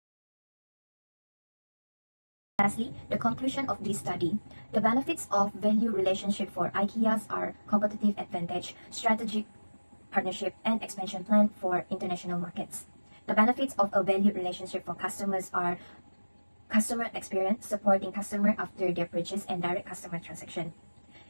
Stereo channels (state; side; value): inverted; both; correlation -1.00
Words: Lastly, the conclusion of this study. The benefits of value relationship for Ikeas are competitive advantage, strategic partnership, and expansion plan for international markets. The benefits of a value relationship for customers are customer experience, supporting customer after their purchase, and direct customer transaction.